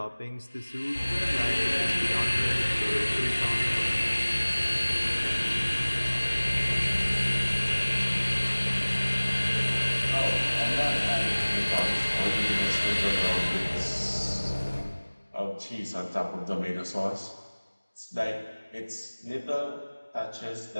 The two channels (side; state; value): both; inverted; correlation -1.00